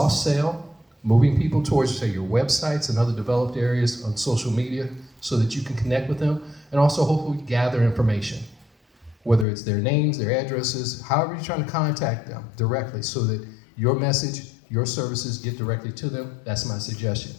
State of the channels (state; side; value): drops out; right; at 9.5 s